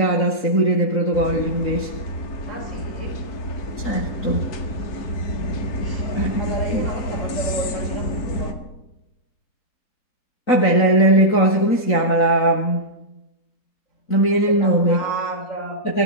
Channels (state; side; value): late; right; 3.9 ms